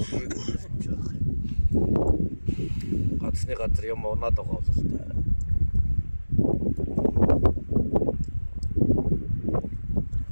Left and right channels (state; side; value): inverted; both; correlation -1.00